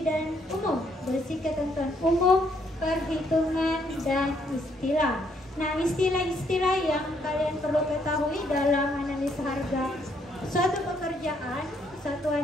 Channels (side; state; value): both; normal; correlation 0.71